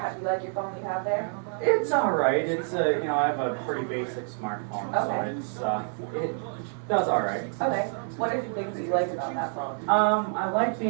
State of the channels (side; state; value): left; silent; 60 dB below the other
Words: do you like your phone you have there? It's alright. It's I have a pretty basic smartphone, Okay. so it does alright. Okay. What are some things that you like about that phone? I like